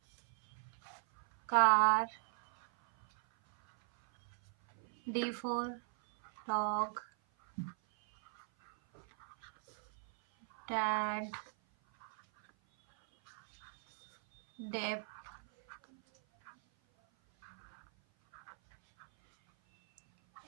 Car. D for dog. Dad. Dep.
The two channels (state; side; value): silent; left; 52 dB below the other